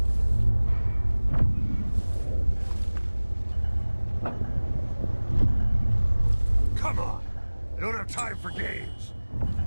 Come on! I don't have time for games!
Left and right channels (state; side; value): inverted; both; correlation -1.00